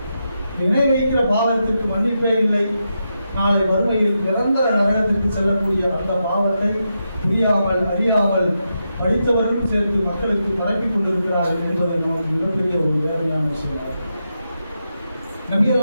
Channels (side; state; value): both; inverted; correlation -0.85